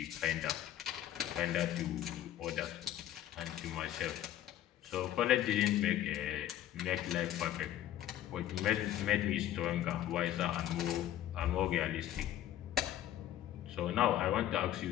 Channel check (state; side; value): quieter; right; 12.4 dB